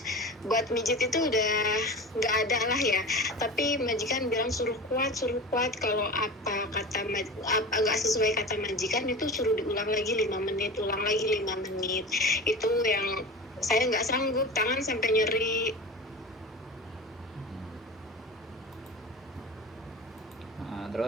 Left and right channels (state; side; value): normal; both; correlation 0.32